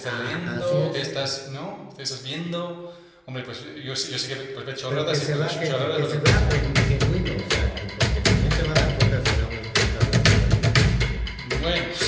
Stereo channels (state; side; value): identical; both; correlation 1.00